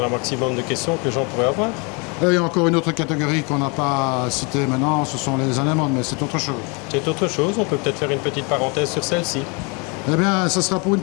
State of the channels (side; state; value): right; quieter; 31.7 dB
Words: à un maximum de questions que les gens pourraient avoir. Et il y a encore une autre catégorie qu'on n'a pas citée maintenant, ce sont les anémones, mais c'est autre chose. C'est autre chose, on peut peut-être faire une petite parenthèse sur celle-ci. Eh bien, ce sera pour une